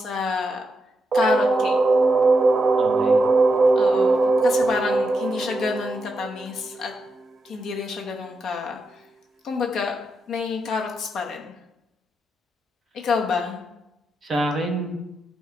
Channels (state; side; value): normal; both; correlation 0.85